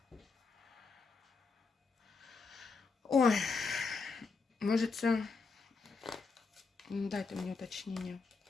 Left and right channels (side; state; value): right; quieter; 4.5 dB